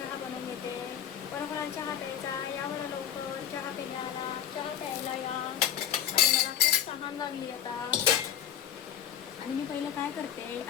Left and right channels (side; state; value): right; quieter; 10.0 dB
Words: बनवून घेते. कोणाकोणाला चहा प्यायचा या बरं लवकर. चहा प्यायला, चहा प्यायला या. आणि मला खूप तहान लागली आता. आणि मी पहिलं काय करते,